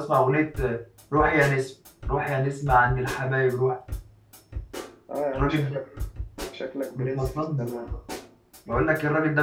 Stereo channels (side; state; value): both; identical; correlation 1.00